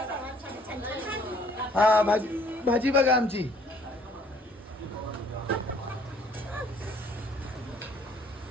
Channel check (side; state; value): both; normal; correlation 0.60